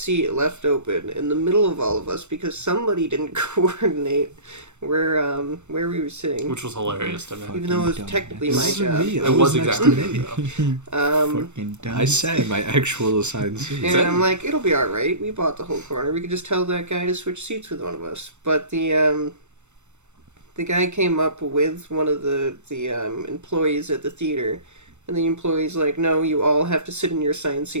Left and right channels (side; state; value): left; late; 0.83 ms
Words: left open in the middle of all of us because somebody didn't coordinate where we were sitting, Which was hilarious to me. even though it was Fucking technically This my isn't job. me. It I was was next exactly to me. me, though. Fucking dumb. I sat in my actual assigned seat. And I'm like, it'll be all right. We bought the whole corner. We could just tell that guy to switch seats with one of us. But the guy came up with one of the employees at the theater, and the employee's like, no, you all have to sit in your assigned